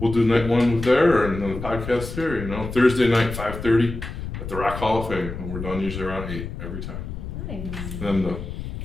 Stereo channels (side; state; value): left; noise; rumble, 8 dB below the sound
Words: do night 1 there and then the podcast here. You know, Thursday night, 5:30 at the Rock Hall of Fame. And we're done usually around 8 every time. Nice. And then the